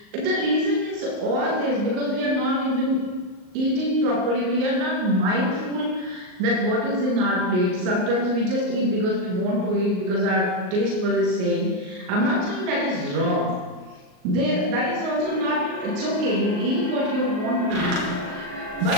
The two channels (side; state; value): left; late; 38 ms